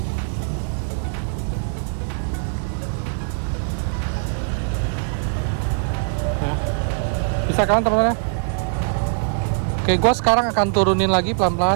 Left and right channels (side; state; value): left; silent; 60 dB below the other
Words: Bisa kan teman-teman? Oke, gue sekarang akan turunin lagi